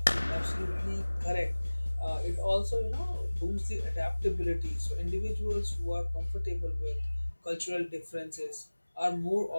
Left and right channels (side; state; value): both; inverted; correlation -1.00